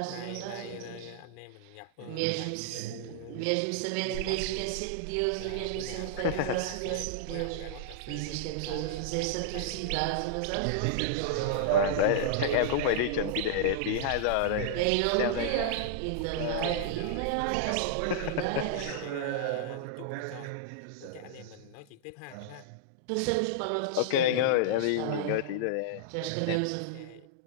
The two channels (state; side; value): different; both; correlation -0.01